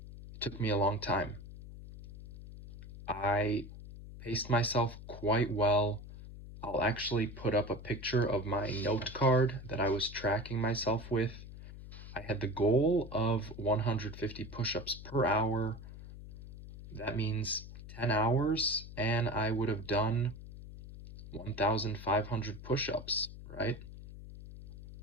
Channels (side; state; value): left; noise; hum, 14 dB below the sound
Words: It took me a long time. I paced myself quite well. I'll actually put up a picture of my note card that I was tracking myself with. I had the goal of 150 push-ups per hour. That means 10 hours, and I would have done 1,500 push-ups, right?